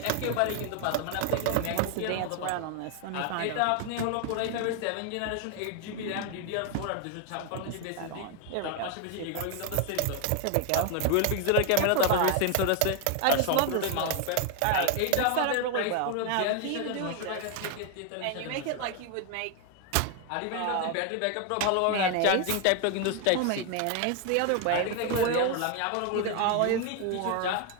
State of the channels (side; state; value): both; different; correlation 0.01